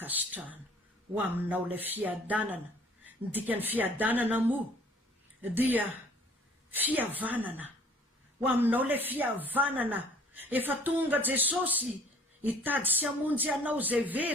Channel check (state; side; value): normal; both; correlation 0.54